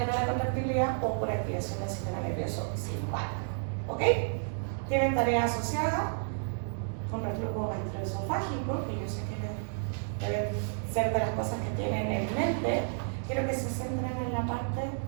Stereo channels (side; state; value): left; silent; digital silence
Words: la contractibilidad o por activación del sistema nervioso simpático. ¿Ok? Tienen tarea asociada con reflujo gastroesofágico, que yo sé que deben ser de las cosas que tienen en mente. Quiero que se centren en la parte